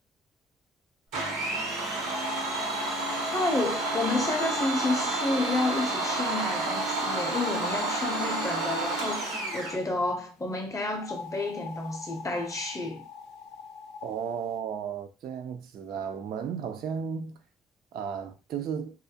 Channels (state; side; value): normal; both; correlation 0.49